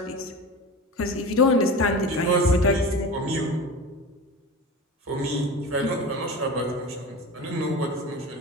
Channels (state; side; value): normal; both; correlation 0.30